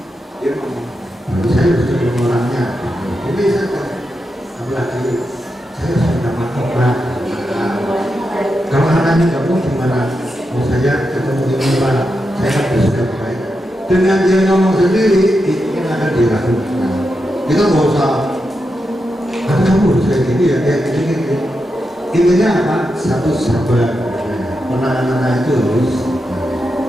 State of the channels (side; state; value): both; normal; correlation 0.87